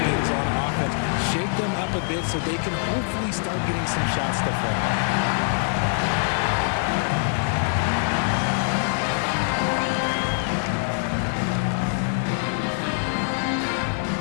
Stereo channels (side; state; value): right; silent; digital silence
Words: on offense. Shake them up a bit so they can hopefully start getting some shots to fall.